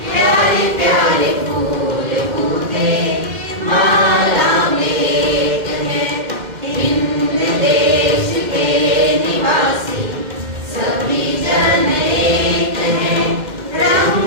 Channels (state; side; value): late; left; 2.1 ms